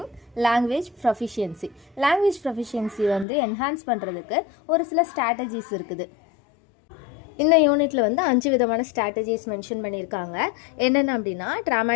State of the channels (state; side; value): drops out; right; at 3.2 s